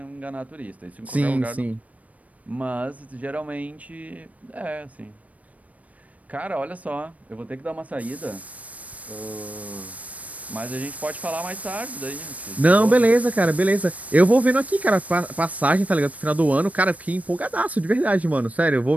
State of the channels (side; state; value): left; late; 0.069 ms